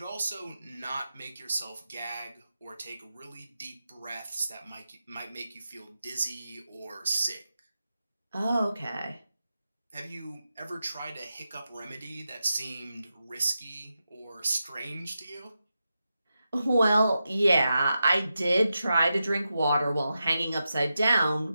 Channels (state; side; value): inverted; both; correlation -0.89